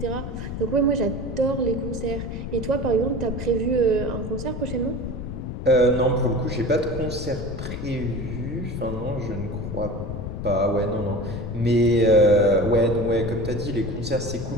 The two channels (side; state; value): left; noise; rumble, 6 dB below the sound